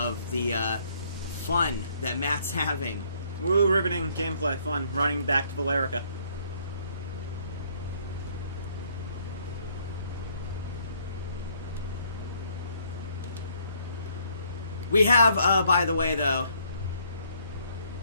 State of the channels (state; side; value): inverted; both; correlation -0.65